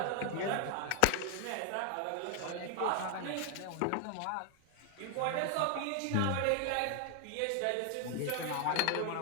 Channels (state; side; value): different; both; correlation 0.00